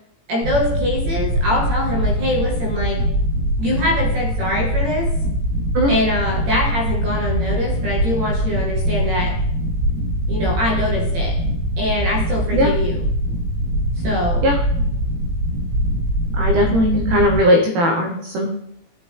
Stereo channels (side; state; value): left; late; 18 ms